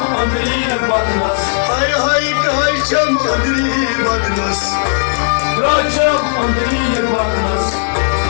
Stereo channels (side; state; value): right; silent; digital silence